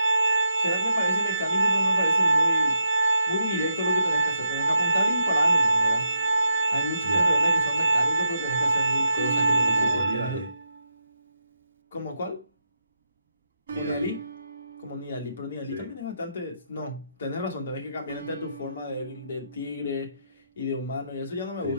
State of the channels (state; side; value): inverted; both; correlation -0.83